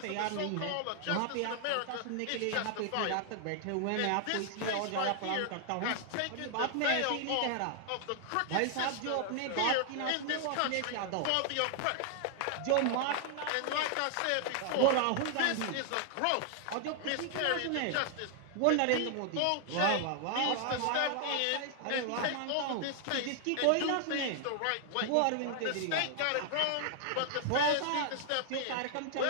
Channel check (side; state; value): both; different; correlation 0.00